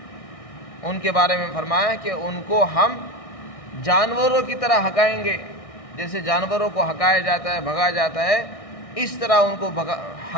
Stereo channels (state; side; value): late; right; 1.6 ms